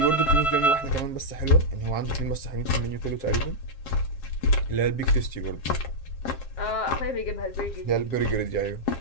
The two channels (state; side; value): late; right; 7.5 ms